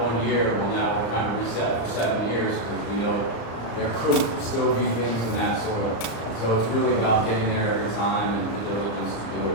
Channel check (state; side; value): late; right; 35 ms